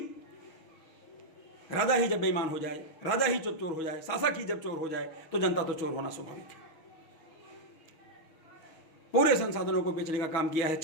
राजा ही जब बेईमान हो जाए, राजा ही जब चोर हो जाए, शासक ही जब चोर हो जाए, तो जनता तो चोर होना स्वाभाविक है। पूरे संसाधनों को बेचने का काम किया है,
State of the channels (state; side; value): late; right; 6.3 ms